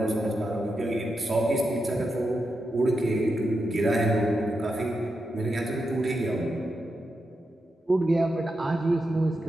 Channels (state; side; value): normal; both; correlation 0.87